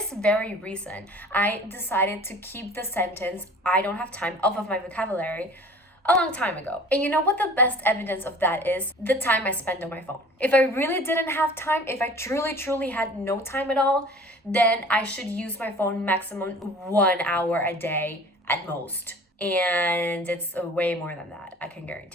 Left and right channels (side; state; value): both; normal; correlation 0.45